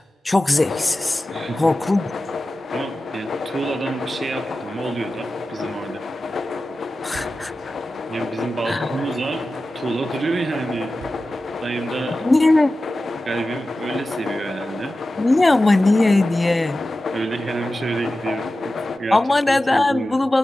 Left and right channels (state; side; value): normal; both; correlation 0.94